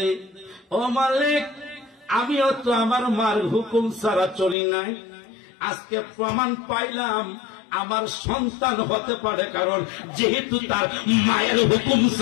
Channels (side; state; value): right; drops out; at 4.5 s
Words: ও মালিক, আমিও তো আমার মার হুকুম ছাড়া চলি নাই, আজকে প্রমাণ পাইলাম আমার সন্তান হতে পারে, কারণ যেহেতু তার মায়ের হুকুম